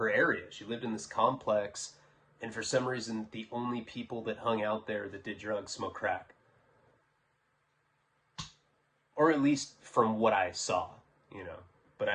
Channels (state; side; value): identical; both; correlation 1.00